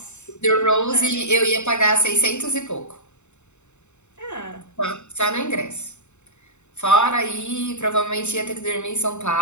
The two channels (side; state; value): right; late; 0.83 ms